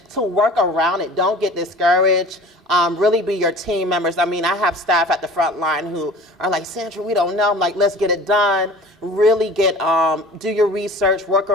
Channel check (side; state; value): both; normal; correlation 0.42